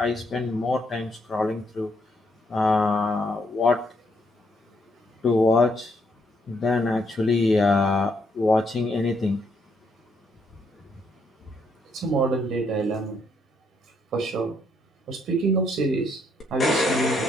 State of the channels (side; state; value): both; normal; correlation 0.73